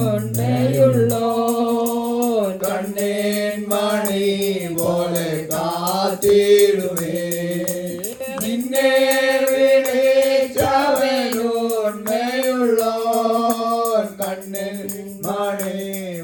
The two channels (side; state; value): both; identical; correlation 1.00